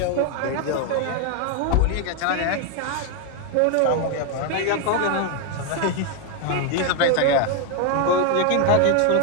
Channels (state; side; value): different; both; correlation 0.01